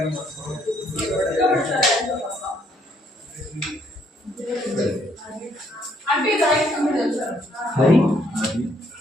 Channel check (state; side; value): normal; both; correlation 0.68